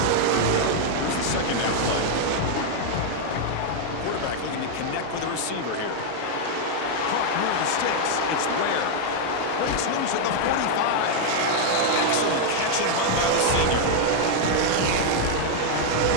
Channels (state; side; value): different; both; correlation 0.00